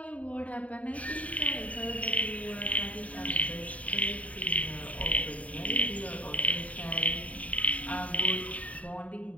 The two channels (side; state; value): right; late; 0.068 ms